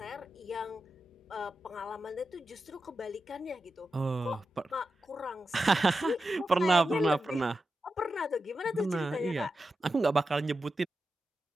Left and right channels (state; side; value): normal; both; correlation 0.90